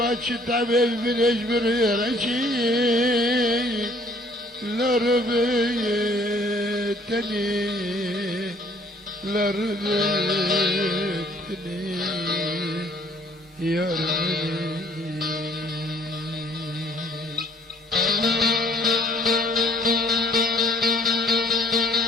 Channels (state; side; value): normal; both; correlation 0.59